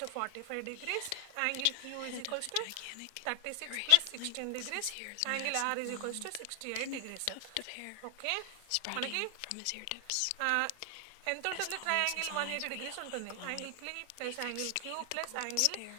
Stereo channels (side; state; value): both; different; correlation 0.00